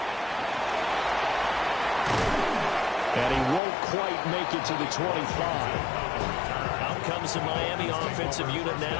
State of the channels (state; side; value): drops out; right; at 3.6 s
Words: And he won't quite make it to the 25. Out comes the Miami offensive unit